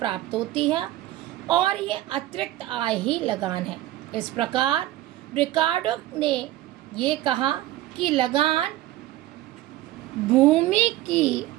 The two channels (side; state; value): left; quieter; 15.3 dB